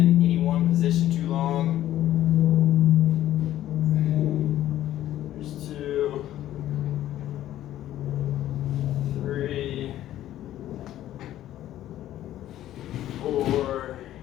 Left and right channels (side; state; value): right; quieter; 13.0 dB